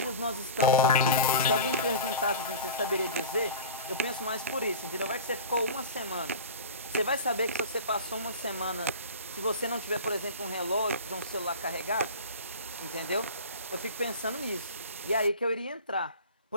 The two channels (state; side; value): inverted; both; correlation -0.35